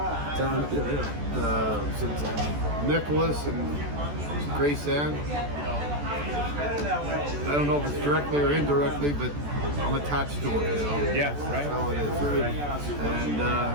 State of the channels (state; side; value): late; left; 14 ms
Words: Nicholas, and Grace Ann. I don't know if it's directly or indirectly, but I'm attached to it, you know. Yeah, right. That's how it is, right? And